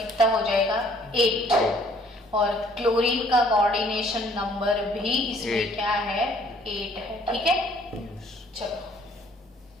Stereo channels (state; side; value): normal; both; correlation 0.60